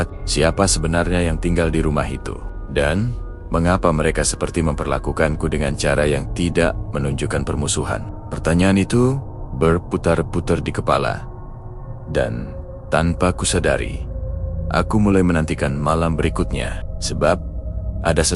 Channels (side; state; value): both; identical; correlation 1.00